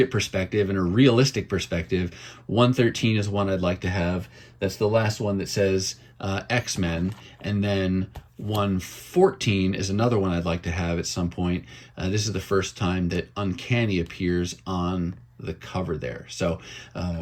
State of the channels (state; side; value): identical; both; correlation 1.00